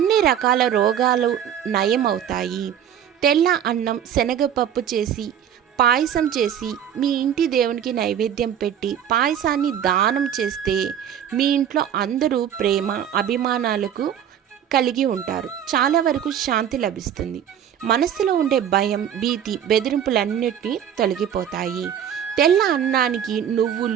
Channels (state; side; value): quieter; left; 9.5 dB